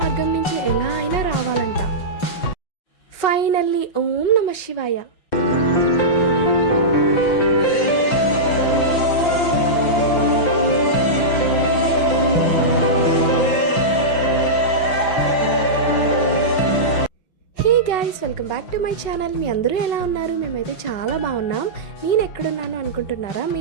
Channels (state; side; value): late; right; 5.7 ms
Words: మార్గం నుంచి ఎలా అయినా రావాలంట. ఫైనల్లీ ఓం నమ శివాయ. Welcome back to my channel. మీ అందరూ ఎలా ఉన్నారు? మేమైతే చాలా బాగున్నాం. నేను ఎక్కడున్నాను అనుకుంటున్నారా?